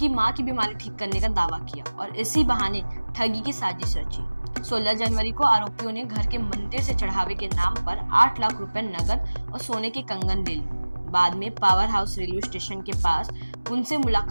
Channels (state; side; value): inverted; both; correlation -1.00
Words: मां की बीमारी ठीक करने का दावा किया और इसी बहाने ठगी की साजिश रची। 16 जनवरी को आरोपियों ने घर के मंदिर से चढ़ावे के नाम पर 8 लाख रुपए नगद और सोने के कंगन ले लिए। बाद में पावर हाउस रेलवे स्टेशन के पास उनसे